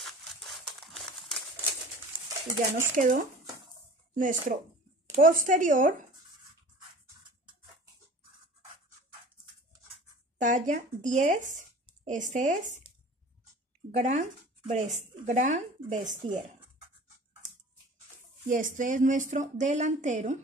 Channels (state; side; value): normal; both; correlation 0.43